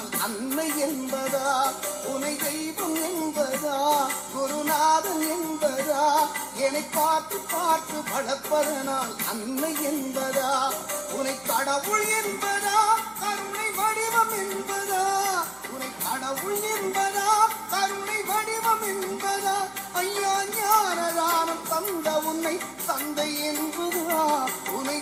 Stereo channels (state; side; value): noise; right; hum, 27 dB below the sound